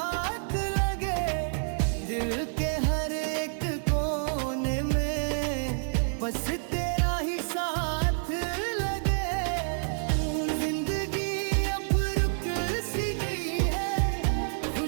लगे। दिल के हर एक कोने में बस तेरा ही साथ लगे। जिंदगी अब रुक सी गई है,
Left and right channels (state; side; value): silent; left; digital silence